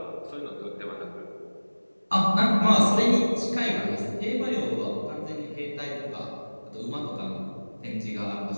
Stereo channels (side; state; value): both; inverted; correlation -1.00